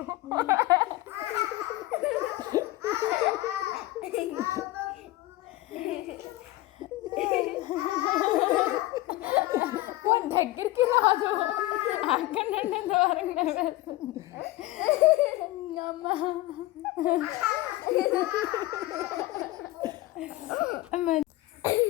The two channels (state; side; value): quieter; right; 17.8 dB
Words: దగ్గరికి రాదు, అక్కడ నుండి దూరంగా వేస్తుంది అమ్మా.